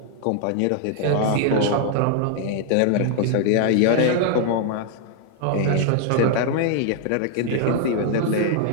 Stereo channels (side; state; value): both; different; correlation 0.00